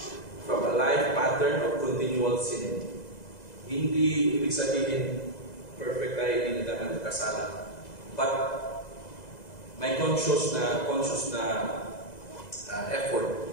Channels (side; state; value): right; late; 2.0 ms